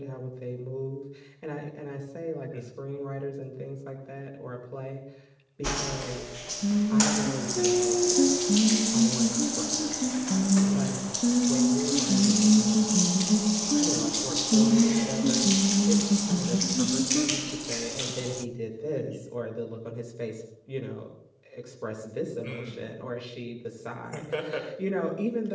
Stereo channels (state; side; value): identical; both; correlation 1.00